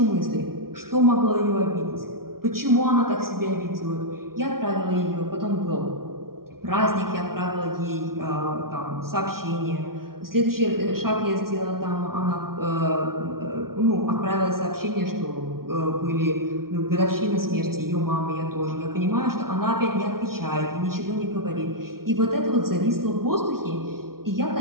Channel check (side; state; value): left; late; 0.93 ms